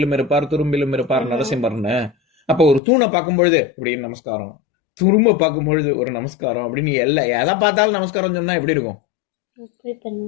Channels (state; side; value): drops out; right; at 2.8 s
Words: இருப்பார், துரும்பிலும் இருப்பார் நரசிம்மர்னு. அப்ப ஒரு தூணை பார்க்கும் பொழுது இப்படின்னு நமஸ்காரம், துரும்ப பார்க்கும் பொழுது ஒரு நமஸ்காரம் அப்படின்னு, எதை பார்த்தாலும் நமஸ்காரம் சொன்னா எப்படி இருக்கும்?